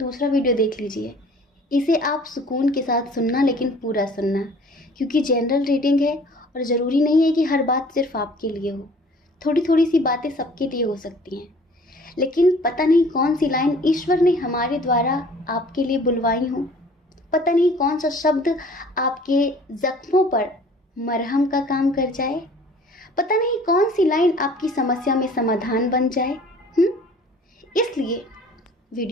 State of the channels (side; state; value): both; normal; correlation 0.51